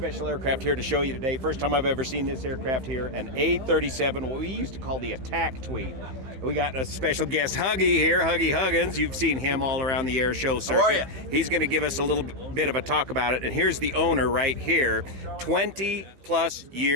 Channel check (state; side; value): late; left; 16 ms